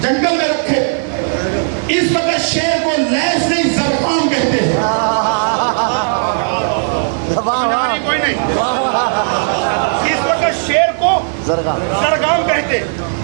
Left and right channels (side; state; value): left; silent; digital silence